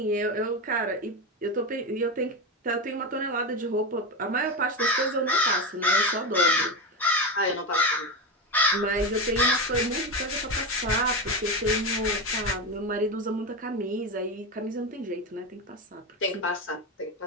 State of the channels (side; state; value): both; normal; correlation 0.17